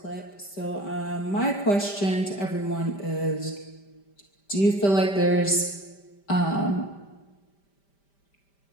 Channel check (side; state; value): right; late; 5.1 ms